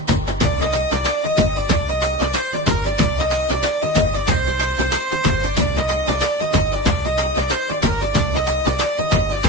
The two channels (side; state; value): both; normal; correlation 0.31